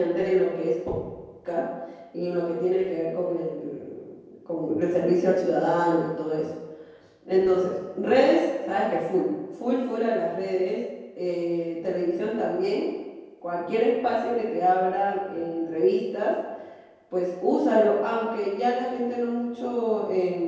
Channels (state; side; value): identical; both; correlation 1.00